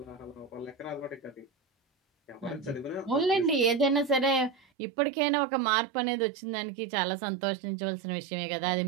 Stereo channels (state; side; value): drops out; left; at 4.7 s